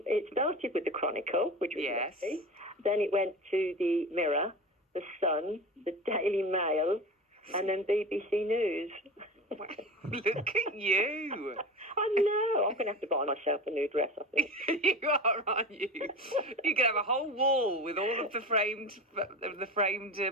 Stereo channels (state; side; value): normal; both; correlation 0.30